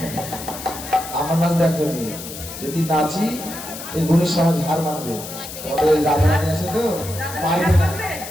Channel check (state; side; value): noise; left; hiss, 11 dB below the sound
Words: আমার নাচ দেখো নি, যদি নাচি এই গুণী সমাজ হার মানবে। তোমাদের ওই রাধারানী আছে তো, পারবে না,